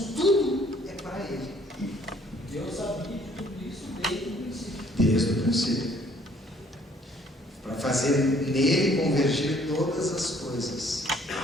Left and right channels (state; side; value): normal; both; correlation 0.60